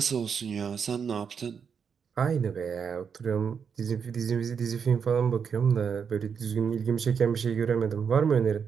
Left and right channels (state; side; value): quieter; left; 6.7 dB